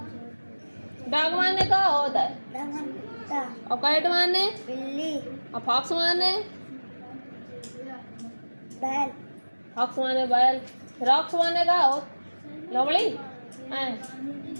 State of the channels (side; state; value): both; inverted; correlation -1.00